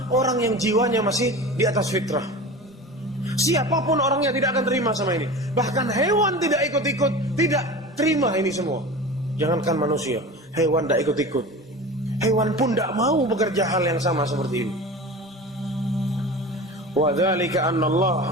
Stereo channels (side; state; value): both; normal; correlation 0.33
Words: orang yang jiwanya masih di atas fitrah. Siapapun orangnya tidak akan terima sama ini. Bahkan hewan tidak ikut-ikut, tidak terima ini semua. Jangankan manusia, hewan tidak ikut-ikut. Hewan pun tidak mau bekerja hal yang sama seperti ini. Wa dzalika anna Allah